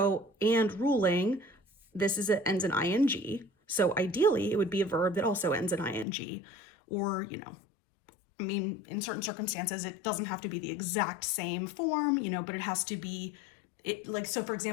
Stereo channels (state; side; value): drops out; right; at 6.1 s